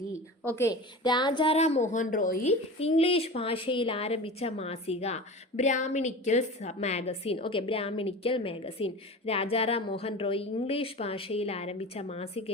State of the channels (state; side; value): normal; both; correlation 0.32